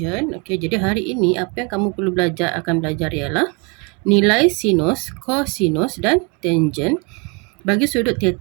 Okey, jadi hari ini apa yang kamu perlu akan belajar ialah nilai sinus, cosinus dan tangent bagi sudut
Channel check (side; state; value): left; quieter; 31.3 dB